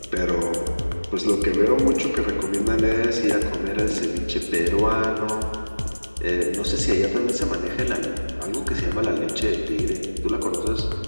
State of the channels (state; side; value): inverted; both; correlation -1.00